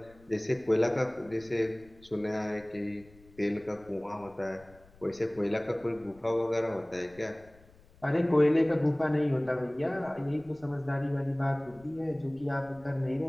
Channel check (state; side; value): noise; left; rumble, 26 dB below the sound